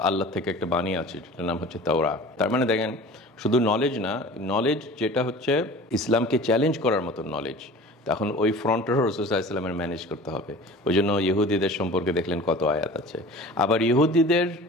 আল্লাহ থেকে একটা বাণী আছে, যেটার নাম হচ্ছে তাওরাত। তার মানে দেখেন শুধু নলেজ না, নলেজ যেটা হচ্ছে ইসলামকে চ্যালেঞ্জ করার মতো নলেজ, তখন ওই ফ্রন্টেরও রাসূল সাল্লাল্লাহু আলাইহি ওয়াসাল্লামের ম্যানেজ করতে হবে। ওই জন্য ইহুদিদের সম্পর্কে দেখলেন কত আয়াত আছে। আবার ইহুদিদের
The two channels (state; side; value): normal; both; correlation 0.41